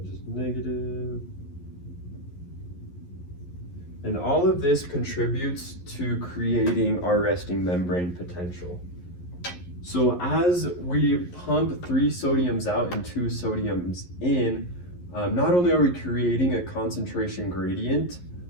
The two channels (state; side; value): late; right; 11 ms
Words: just negative. And all of this contributes to creating our resting membrane potential. So as we pump 3 sodiums out and 2 sodiums in, not only are we creating a concentration gradient